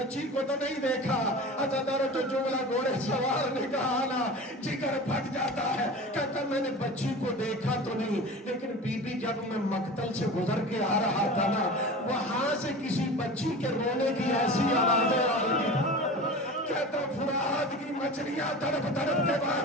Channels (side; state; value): both; normal; correlation 0.34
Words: کو تو نہیں دیکھا؟ عزادار جو جملہ گھوڑے سوار نے کہا نا، جگر پھٹ جاتا ہے، کہتا میں نے بچی کو دیکھا تو نہیں، لیکن بی بی جب میں مقتل سے گزر کے آ رہا تھا نا، وہاں سے کسی بچی کے رونے کی ایسی آوازیں آ رہی تھی، کہتا فرات کی مچھلیاں تڑپ تڑپ کے